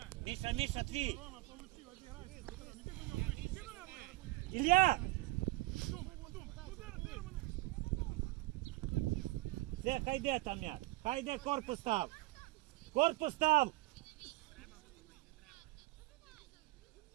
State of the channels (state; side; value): quieter; left; 20.4 dB